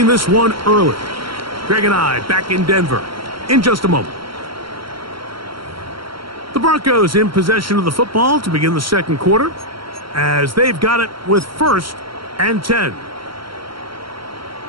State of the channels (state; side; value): late; left; 0.74 ms